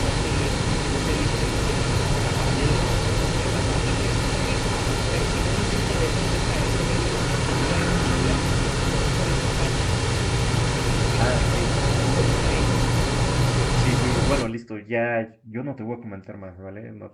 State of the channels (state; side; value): identical; both; correlation 1.00